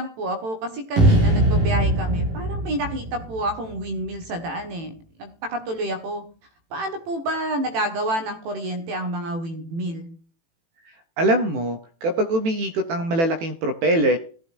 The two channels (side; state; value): left; late; 18 ms